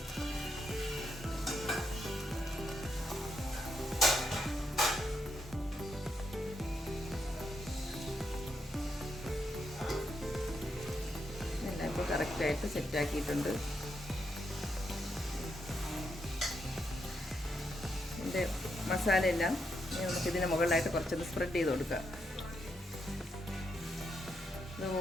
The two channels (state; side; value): normal; both; correlation 0.81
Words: ഇപ്പോൾ കറക്റ്റായിട്ട് സെറ്റാക്കിയിട്ടുണ്ട്. ഇതിൻ്റെ മസാലയെല്ലാം നമുക്കിതിന് മുകളിലായിട്ട് കുറച്ചൊന്ന് സ്പ്രെഡ് ചെയ്ത് കൊടുക്കാം. ഇത്